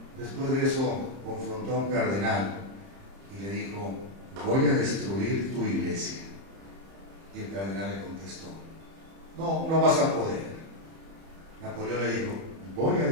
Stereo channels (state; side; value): late; left; 30 ms